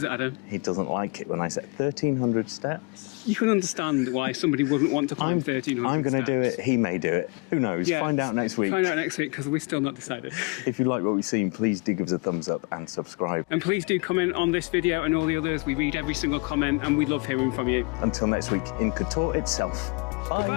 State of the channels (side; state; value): right; quieter; 30.5 dB